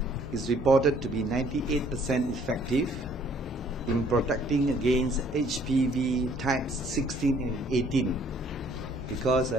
is reported to be 98% effective in protecting against HPV types 16 and 18. Because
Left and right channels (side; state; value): both; normal; correlation 0.60